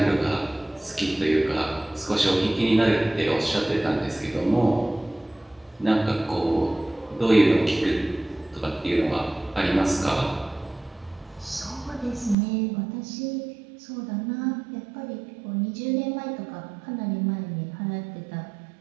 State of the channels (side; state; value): left; drops out; at 12.4 s